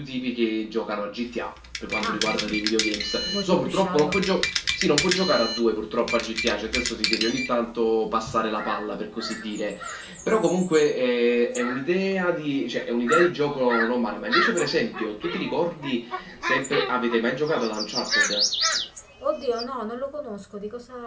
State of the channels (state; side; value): identical; both; correlation 1.00